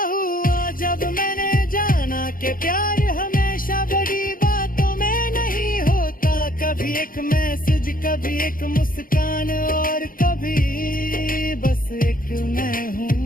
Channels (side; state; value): right; late; 0.41 ms